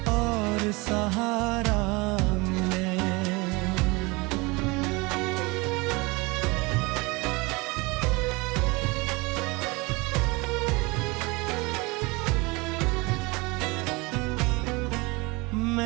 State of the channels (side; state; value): left; quieter; 25.4 dB